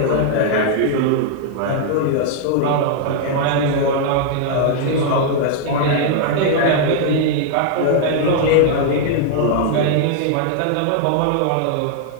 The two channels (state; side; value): different; both; correlation 0.00